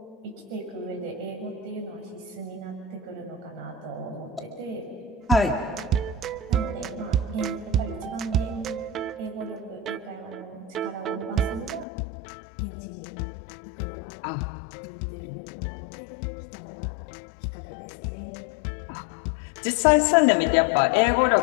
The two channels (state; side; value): drops out; right; at 11.9 s